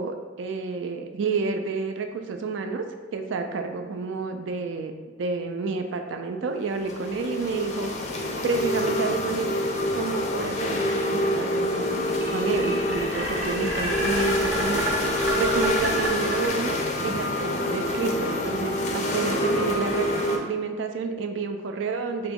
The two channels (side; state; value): both; normal; correlation 0.26